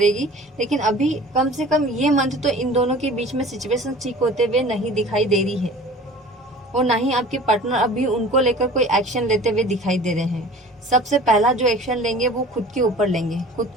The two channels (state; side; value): normal; both; correlation 0.43